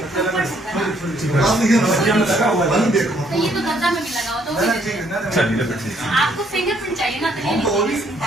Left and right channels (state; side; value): normal; both; correlation 0.67